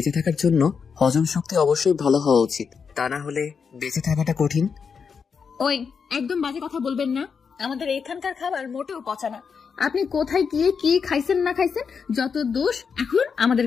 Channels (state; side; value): quieter; right; 6.0 dB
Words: থাকার জন্য হজম শক্তি অবশ্যই ভালো হওয়া উচিত, তা না হলে বেঁচে থাকাটা কঠিন। ওই, একদম বাজে কথা বলবেন না। আমাদের এখানকার খাবার মোটেও পচা না। আপনি কোথায় গিয়ে কি খাইছেন না খাইছেন, যত দোষ এখন আমাদের